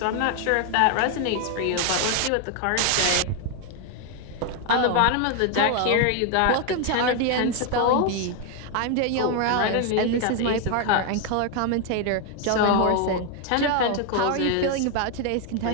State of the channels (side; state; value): both; different; correlation 0.01